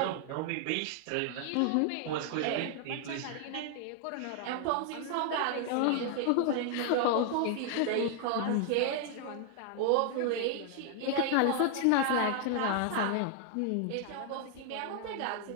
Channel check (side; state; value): both; different; correlation 0.00